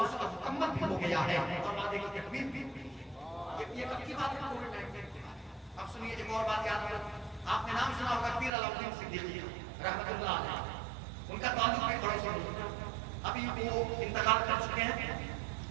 اس کا مکمل بھی ہو گیا ہے, اور وعدے کی تکمیل بھی. یہ کب کی بات ہے؟ کووڈ-19 کی بات. اب سنیے ایک اور بات یاد رکھو, آپ نے نام سنا ہوگا پیر علاؤدین صدیقی رحمۃ اللہ علیہ, ان کا تعلق بھی پڑوسی ہے. ابھی وہ انتقال کر چکے ہیں.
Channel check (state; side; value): drops out; left; at 8.5 s